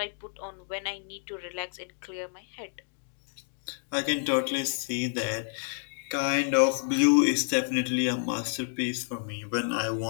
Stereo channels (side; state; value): right; silent; digital silence